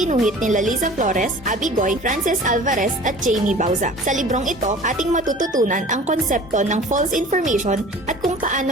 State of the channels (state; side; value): normal; both; correlation 0.44